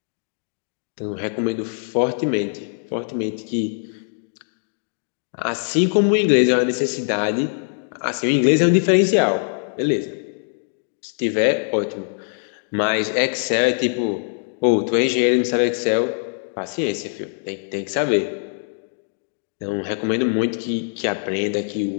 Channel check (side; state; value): right; silent; 64 dB below the other